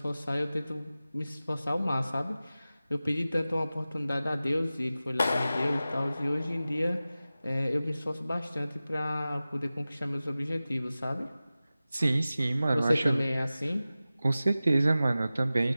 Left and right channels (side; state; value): both; inverted; correlation -0.96